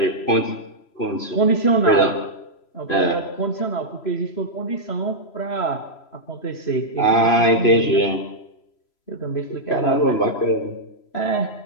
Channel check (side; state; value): right; late; 3.0 ms